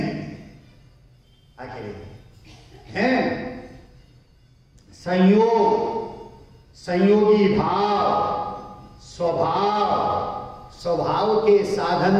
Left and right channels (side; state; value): both; identical; correlation 1.00